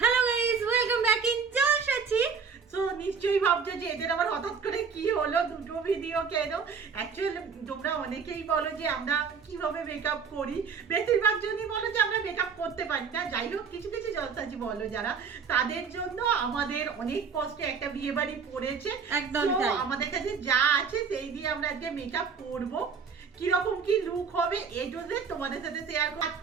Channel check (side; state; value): left; quieter; 6.0 dB